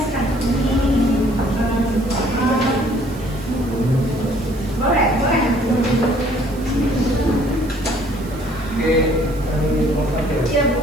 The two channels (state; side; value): noise; right; hiss, 21 dB below the sound